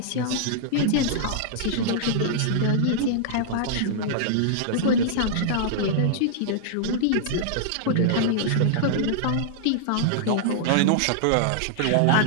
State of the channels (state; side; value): different; both; correlation -0.01